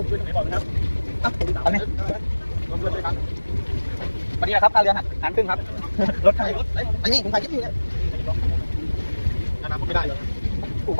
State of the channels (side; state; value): both; inverted; correlation -1.00